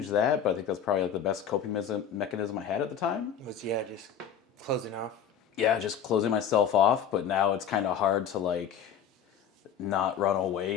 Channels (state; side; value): quieter; right; 7.9 dB